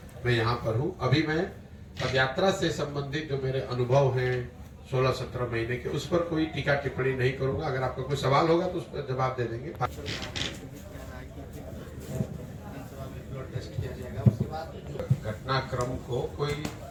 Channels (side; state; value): both; identical; correlation 1.00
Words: मैं यहाँ पर हूँ। अभी मैं पदयात्रा से संबंधित जो मेरे अनुभव हैं 16-17 महीने के, उस पर कोई टीका टिप्पणी नहीं करूंगा। अगर आपका कोई सवाल होगा तो उस पर जवाब दे देंगे। घटनाक्रम को कोई